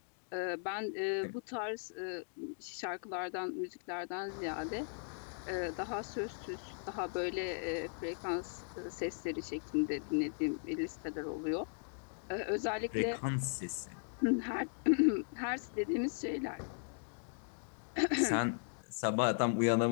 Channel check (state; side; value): silent; right; digital silence